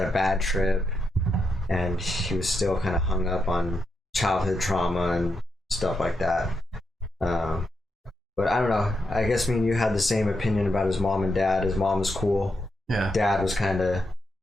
a bad trip, and he was still kind of hung up on childhood trauma and stuff like that. But I don't know. I guess me and you had the same opinion about his mom and dad. His mom was cool. Yeah. Dad was kind of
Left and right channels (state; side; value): normal; both; correlation 0.84